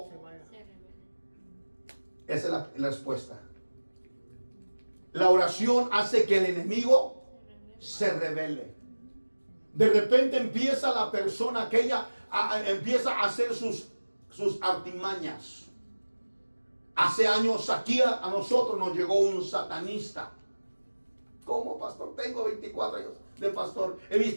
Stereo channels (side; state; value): both; inverted; correlation -1.00